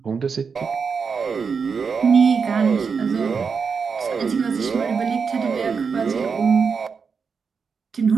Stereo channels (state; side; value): quieter; left; 5.6 dB